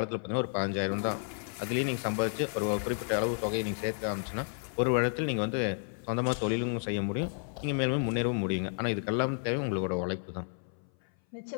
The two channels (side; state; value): right; silent; 57 dB below the other